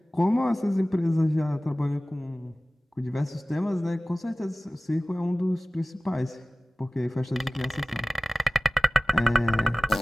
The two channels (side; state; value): both; normal; correlation 0.97